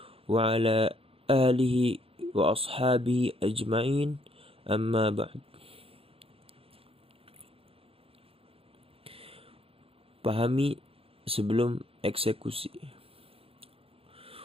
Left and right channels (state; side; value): late; left; 0.27 ms